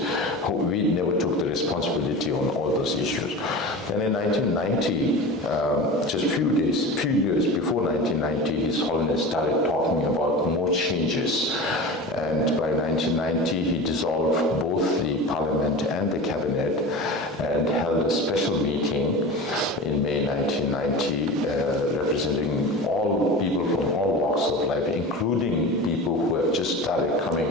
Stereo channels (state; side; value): normal; both; correlation 0.31